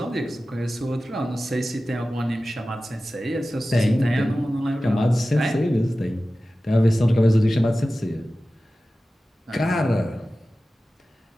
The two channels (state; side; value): normal; both; correlation 0.95